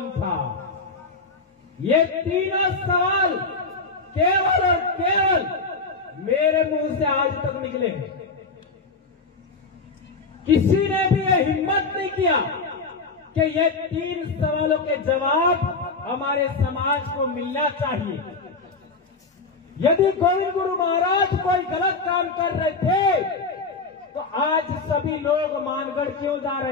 था। ये तीनों सवाल केवल और केवल मेरे मुंह से आज तक निकले हैं। किसी ने भी ये हिम्मत नहीं किया कि ये 3 सवालों के जवाब हमारे समाज को मिलना चाहिए। यदि गोविंद गुरु महाराज कोई गलत काम कर रहे थे तो आज सभी लोग मानगढ़ क्यों जा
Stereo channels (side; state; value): right; quieter; 4.0 dB